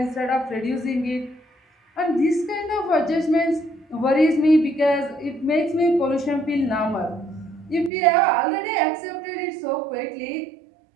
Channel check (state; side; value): drops out; left; at 7.9 s